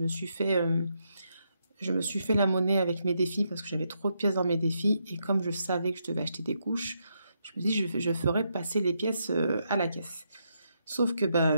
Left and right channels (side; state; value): both; inverted; correlation -0.80